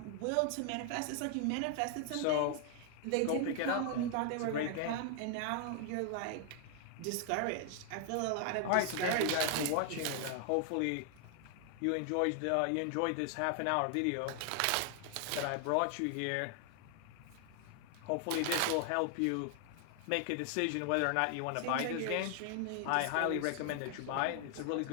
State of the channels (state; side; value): different; both; correlation 0.00